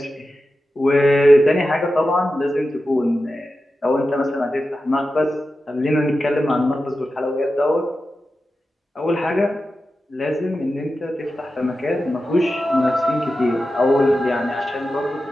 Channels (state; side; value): normal; both; correlation 0.92